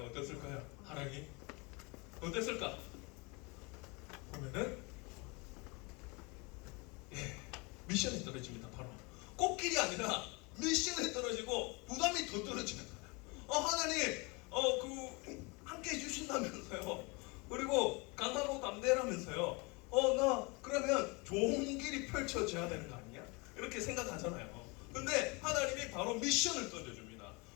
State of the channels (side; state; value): right; quieter; 28.3 dB